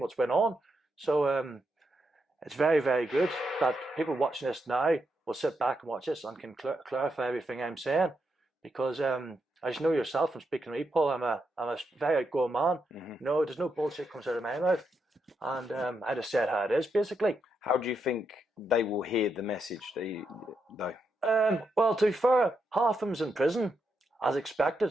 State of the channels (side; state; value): both; normal; correlation 0.82